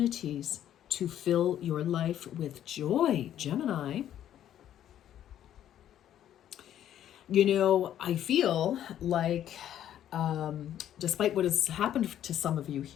to fill your life with joy, Gemini. I feel like, despite what has happened to some of you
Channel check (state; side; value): quieter; right; 11.1 dB